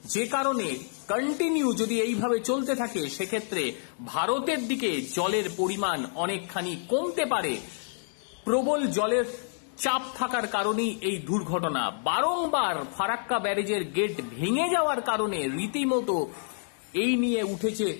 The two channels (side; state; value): right; silent; digital silence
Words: যে কারণে কন্টিনিউ যদি এইভাবে চলতে থাকে সেক্ষেত্রে ভারতের দিকে জলের পরিমাণ অনেকখানি কমতে পারে। প্রবল জলের চাপ থাকার কারণেই এই দুর্ঘটনা। বারংবার ফারাক্কা ব্যারেজের গেট ভেঙে যাওয়ার কারণে রীতিমতো এই নিয়ে উঠেছে